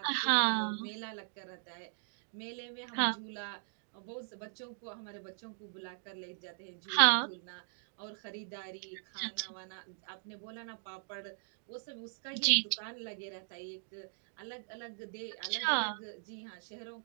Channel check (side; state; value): left; silent; digital silence